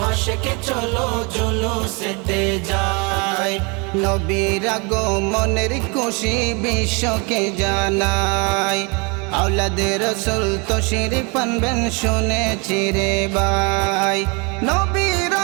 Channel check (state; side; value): quieter; left; 30.8 dB